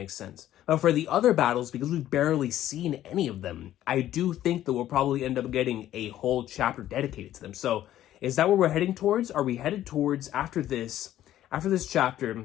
sense. But for the other battles, because we've barely seen any of them, I do think that we'll probably end up getting a whole chapter dedicated to them. So is that what we're heading towards? Are we headed towards after this chapter,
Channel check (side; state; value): right; quieter; 12.7 dB